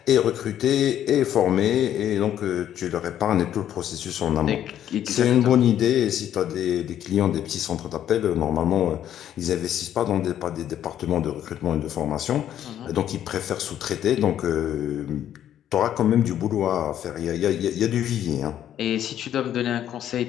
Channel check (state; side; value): quieter; right; 10.8 dB